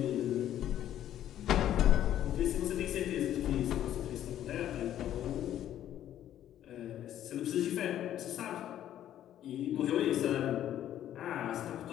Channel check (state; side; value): quieter; right; 11.6 dB